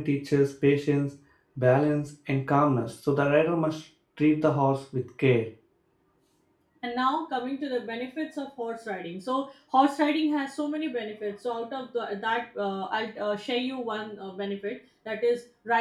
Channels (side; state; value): both; identical; correlation 1.00